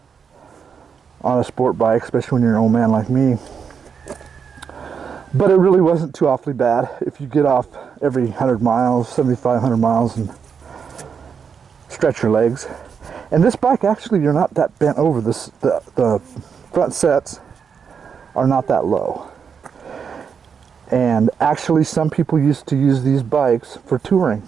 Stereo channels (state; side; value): quieter; left; 6.6 dB